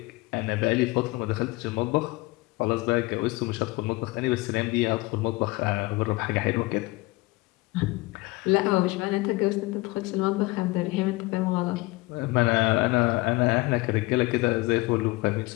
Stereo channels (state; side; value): quieter; right; 22.4 dB